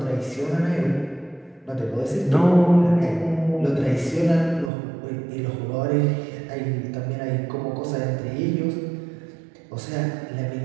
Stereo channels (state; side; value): drops out; left; at 4.7 s